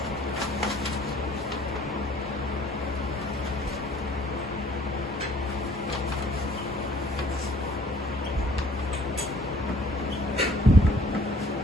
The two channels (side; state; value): both; normal; correlation 0.56